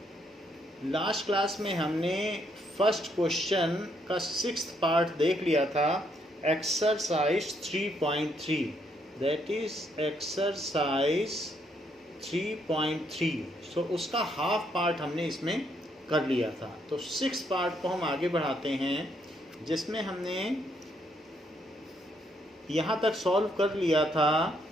last class में हमने फर्स्ट क्वेश्चन का 6th पार्ट देख लिया था, एक्सरसाइज 3.3, दैट इज एक्सरसाइज 3.3। सो उसका हाफ पार्ट हमने इसमें कर लिया था। तो 6th पार्ट को हम आगे बढ़ाते हैं, जिसमें हमने यहाँ तक सॉल्व कर लिया था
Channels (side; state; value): both; normal; correlation 0.73